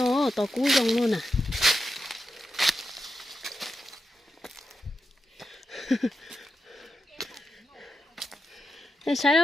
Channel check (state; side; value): normal; both; correlation 0.87